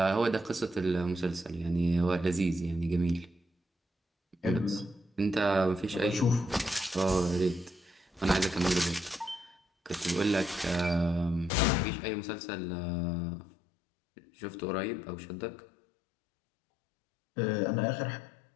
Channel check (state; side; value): drops out; right; at 11.5 s